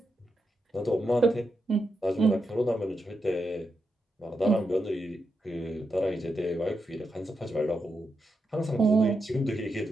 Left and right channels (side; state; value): both; normal; correlation 0.85